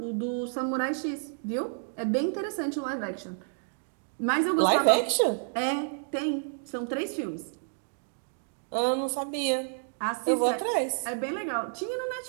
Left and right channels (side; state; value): left; silent; digital silence